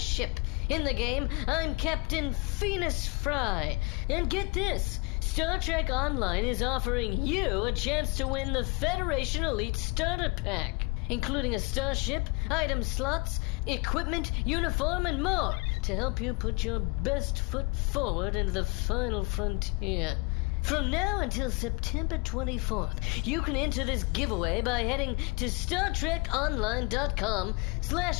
In the game, I'm Captain Phoenix Fry. And get this, Star Trek Online is offering you a chance to win the Federation Elite Starter Pack, including a starship, item slots, equipment, uniform, and more to help you put your best foot forward into the final frontier. From now until September 24th, you can enter this giveaway by heading to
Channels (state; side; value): quieter; right; 27.5 dB